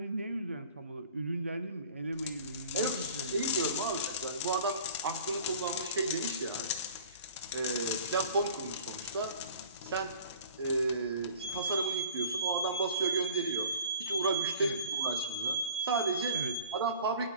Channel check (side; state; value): both; inverted; correlation -0.47